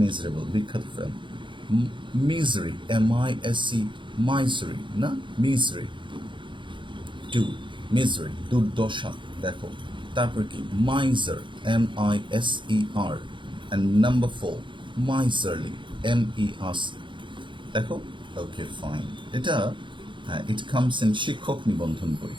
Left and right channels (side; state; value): left; late; 0.23 ms